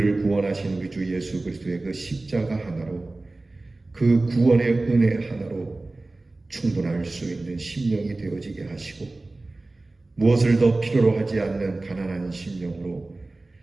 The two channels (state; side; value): quieter; left; 3.1 dB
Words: 구원하신 우리 주 예수 그리스도의 그 십자가 하나로 그 구원의 은혜 하나로 충분할 수 있는 심령이 되어지게 하시고 무엇을 더 필요로 하지 않는 가난한 심령으로